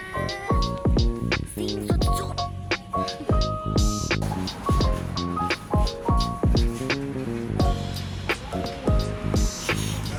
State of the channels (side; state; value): both; identical; correlation 1.00